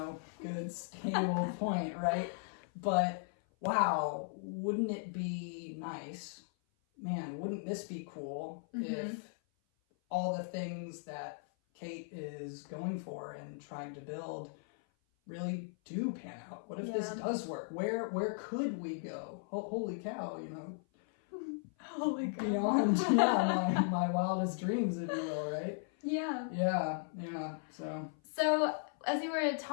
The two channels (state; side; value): silent; right; 53 dB below the other